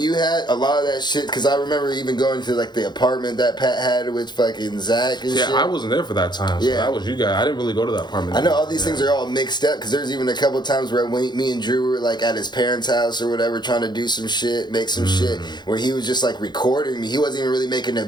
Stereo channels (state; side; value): late; right; 0.21 ms